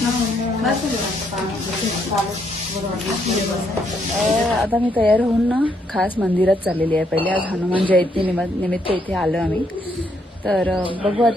आता मी तयार होऊन ना खास मंदिरात चाललेली आहे. पहिले आज हनुमान जयंती निमित्त इथे आलो आम्ही. तर बघू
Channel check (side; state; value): both; normal; correlation 0.74